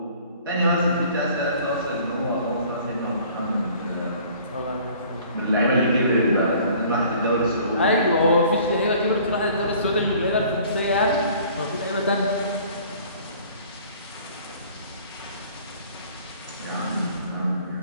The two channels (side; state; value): both; inverted; correlation -0.52